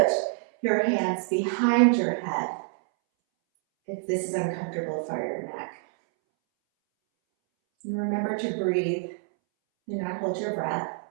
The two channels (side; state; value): left; silent; 60 dB below the other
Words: your hands behind your head if this is uncomfortable for your neck. And remember to breathe and not hold your breath.